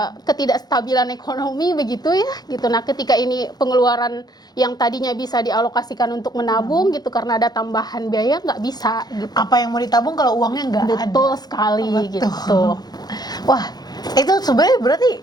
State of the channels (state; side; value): late; right; 0.19 ms